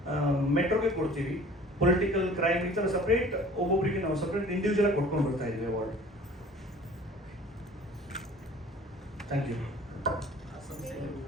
ಮೆಟ್ರೋಗೆ ಕೊಡ್ತೀವಿ, ಪೊಲಿಟಿಕಲ್, ಕ್ರೈಮ್, ಈ ಥರ ಸಪ್ರೇಟ್ ಒಬ್ಬೊಬ್ಬರಿಗೆ ನಾವು ಸಪ್ರೇಟ್ ಇಂಡಿವಿಜುವಲ್ ಆಗಿ ಕೊಟ್ಕೊಂಡು ಬರ್ತಾ ಇದ್ದೀವಿ award. Thank you.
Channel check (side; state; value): both; normal; correlation 0.48